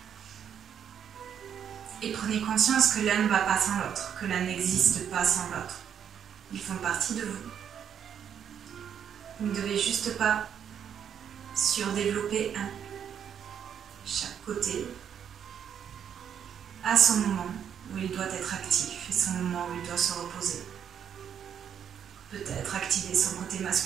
Et prenez conscience que l'un ne va pas sans l'autre, que l'un n'existe pas sans l'autre. Ils font partie de vous. Vous ne devez juste pas surdévelopper un. Chaque côté a son moment où il doit être actif et son moment où il doit se reposer. Peut-être activer son côté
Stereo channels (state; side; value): quieter; left; 8.6 dB